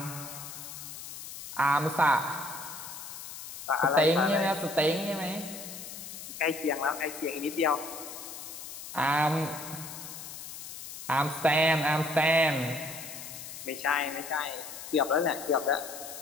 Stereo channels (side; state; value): left; noise; hiss, 11 dB below the sound